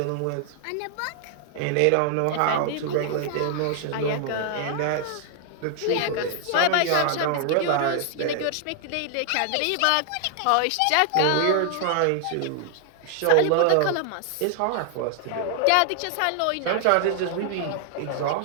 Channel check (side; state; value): both; different; correlation 0.00